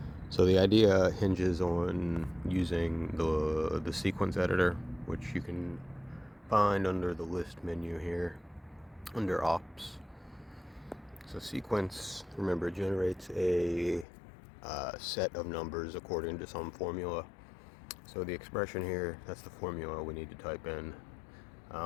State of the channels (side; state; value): right; drops out; at 14.1 s